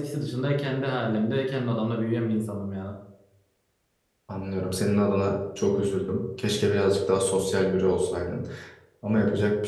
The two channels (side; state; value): both; identical; correlation 1.00